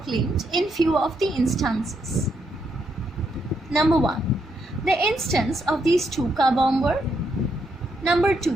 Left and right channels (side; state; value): both; normal; correlation 0.78